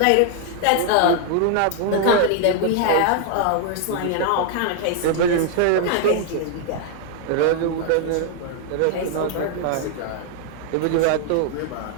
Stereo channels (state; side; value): different; both; correlation 0.00